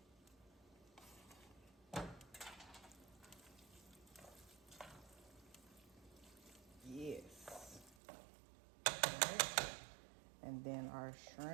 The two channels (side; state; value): left; drops out; at 8.0 s